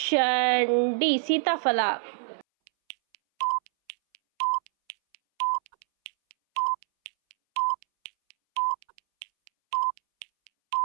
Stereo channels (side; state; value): left; silent; 61 dB below the other